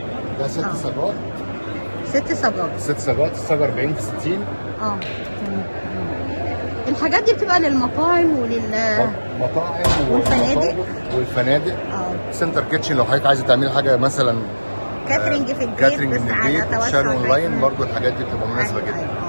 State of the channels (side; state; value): both; inverted; correlation -1.00